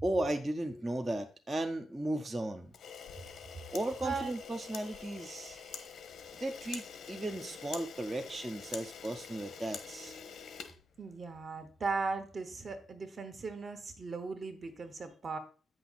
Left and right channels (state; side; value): normal; both; correlation 0.90